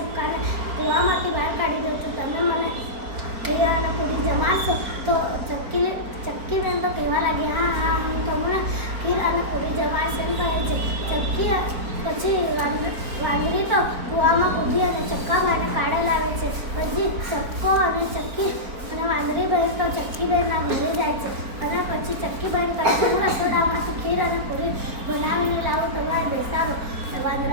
કૂવામાંથી બહાર કાઢી દઉં છું, તમે મને ખીર અને પૂરી જમાડશો? તો ચક્કીબેન તો કહેવા લાગી, હા, હું તમને ખીર અને પૂરી જમાડીશ એમ કહે છે. પછી વાંદરી તો કૂવામાં કૂદી અને ચક્કાભાઈને કાઢે લાવે છે. પછી ચક્કો અને ચક્કી અને વાંદરી બહેન તો ચક્કીબેનના ઘરે જાય છે અને પછી ચક્કીબેન કહે છે, હું રસોડામાંથી ખીર અને પૂરી બનાવીને લાવું, તમારે બેસાડો.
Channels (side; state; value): left; late; 4.4 ms